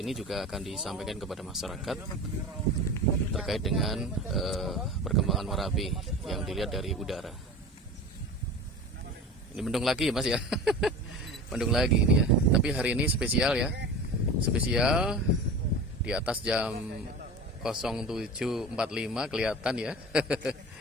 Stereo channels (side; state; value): both; normal; correlation 0.33